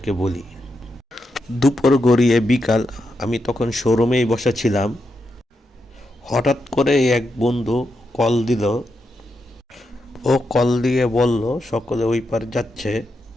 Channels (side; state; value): both; normal; correlation 0.85